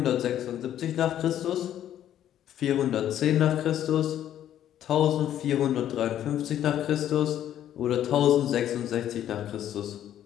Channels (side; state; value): right; quieter; 11.1 dB